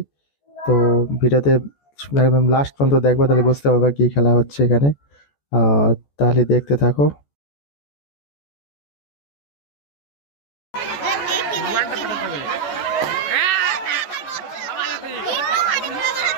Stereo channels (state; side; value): late; right; 14 ms